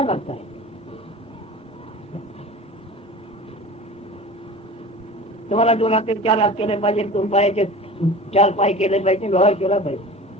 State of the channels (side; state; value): both; normal; correlation 0.36